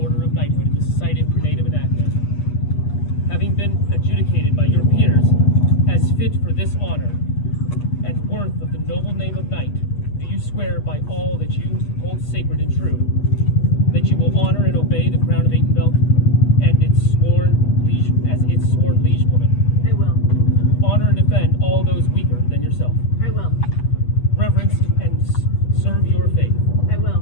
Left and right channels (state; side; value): late; right; 8.3 ms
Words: of knighthood in the Society of Prenatum and Active. Having been adjudicated by your peers as fit for this honor and worth of the noble name of knight, do you swear by all that you hold sacred and true that you will honor and obey the crown of Atenvelt and its sworn liege as its sworn liegewoman? I will. Honor and defend all those weaker than yourself. I will. Reverence and serve your faith. I will.